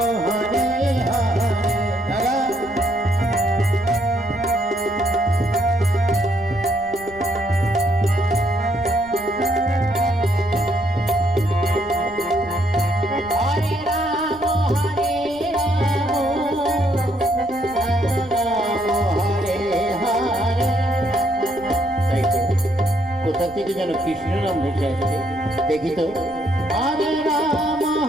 হরে হরে। কোথা থেকে যেন কৃষ্ণ নাম ভেসে আসছে, দেখি তো। হরে রাম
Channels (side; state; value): right; noise; rumble, 23 dB below the sound